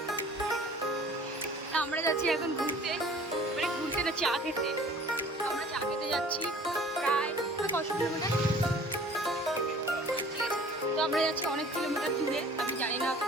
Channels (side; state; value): both; normal; correlation 0.49